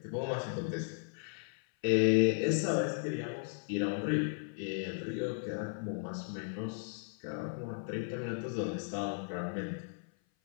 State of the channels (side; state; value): right; silent; 54 dB below the other